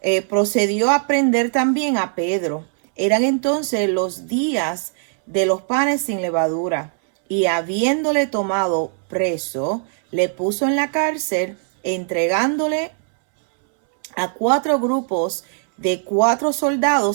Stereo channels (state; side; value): silent; left; 66 dB below the other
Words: procedió a prender también a Pedro. Eran entonces los días de los panes sin levadura, y habiéndole tomado preso, le puso en la cárcel, entregándole a 4 grupos de 4